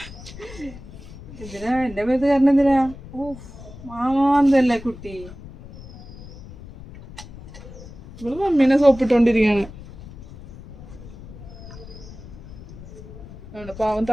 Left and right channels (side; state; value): left; noise; rumble, 16 dB below the sound